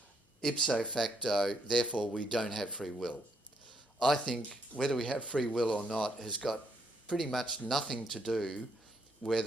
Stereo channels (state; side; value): normal; both; correlation 0.74